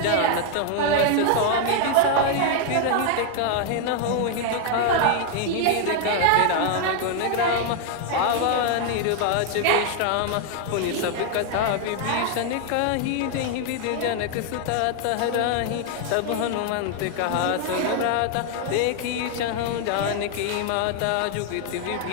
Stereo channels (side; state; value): both; different; correlation 0.00